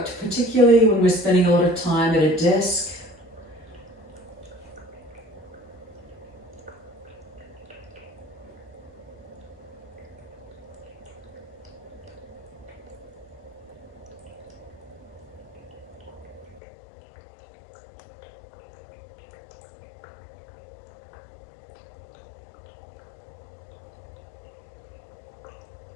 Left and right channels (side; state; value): right; drops out; at 16.6 s